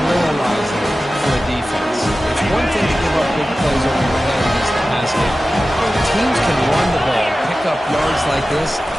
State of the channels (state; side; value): normal; both; correlation 0.95